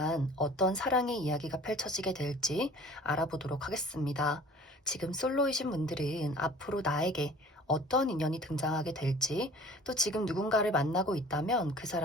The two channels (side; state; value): both; normal; correlation 0.47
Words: 어떤 사랑의 이야기가 펼쳐지게 될지 알아보도록 하겠습니다. 지금 솔로이신 분들은 앞으로 나에게 어떤 인연이 등장하게 될지, 또 지금 누군가를 만나고 있다면 그